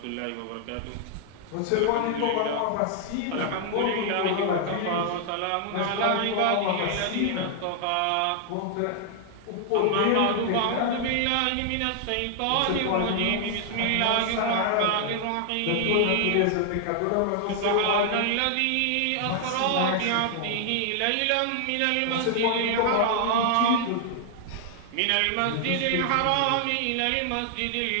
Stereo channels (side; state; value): both; different; correlation 0.00